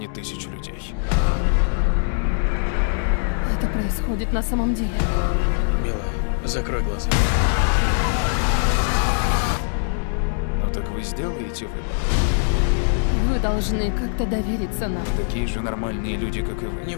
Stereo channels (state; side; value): silent; right; digital silence